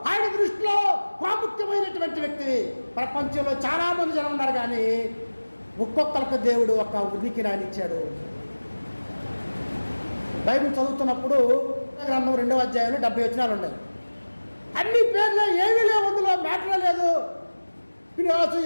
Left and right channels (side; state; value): both; inverted; correlation -1.00